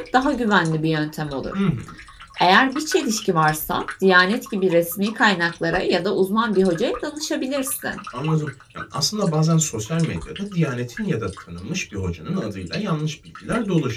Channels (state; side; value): identical; both; correlation 1.00